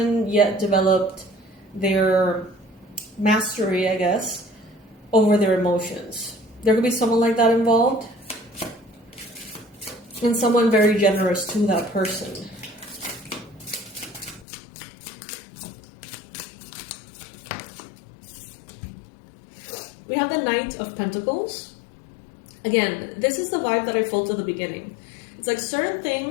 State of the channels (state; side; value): drops out; right; at 14.5 s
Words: yet developed their mastery, I guess, over their emotions. There could be someone like that involved, and someone very generous to that person. We have the Knight of Pentacles. Again, this is the vibe that I felt at the beginning. It's like certain